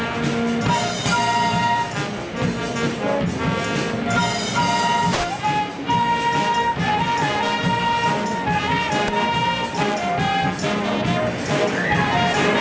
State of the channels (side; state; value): both; identical; correlation 1.00